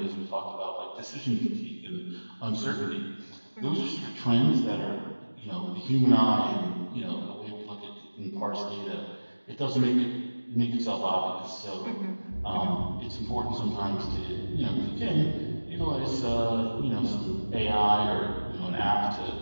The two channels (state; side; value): inverted; both; correlation -1.00